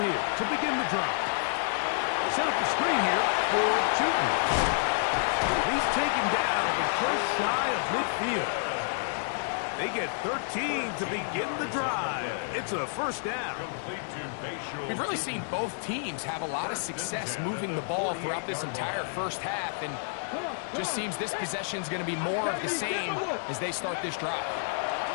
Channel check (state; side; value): silent; right; digital silence